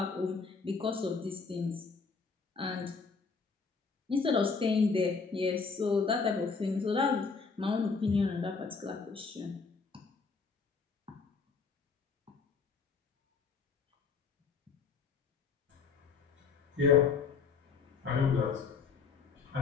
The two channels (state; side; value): quieter; right; 5.1 dB